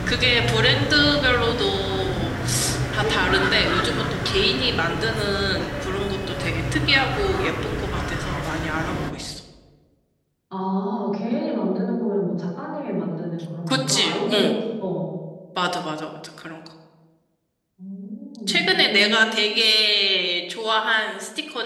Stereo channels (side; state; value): both; identical; correlation 1.00